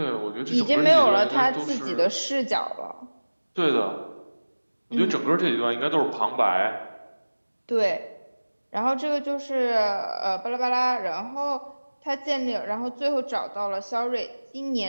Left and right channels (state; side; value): inverted; both; correlation -1.00